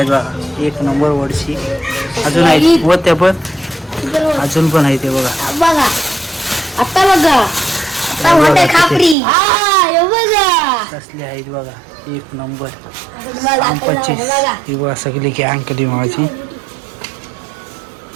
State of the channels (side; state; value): left; drops out; at 9.2 s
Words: बघा. एक नंबर वडशी. अजून आहे व त्या पण अजून पण आहे ते बघा. बघा आता बघा. आता मोठे खापरी. बघा कसले आहेत बघा. एक नंबर. बघा 25. ही बघा सगळी गँग कधी माझी.